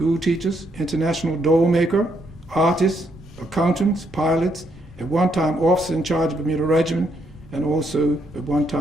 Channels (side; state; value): both; normal; correlation 0.75